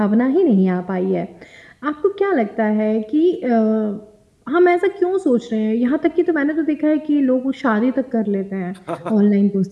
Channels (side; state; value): both; identical; correlation 1.00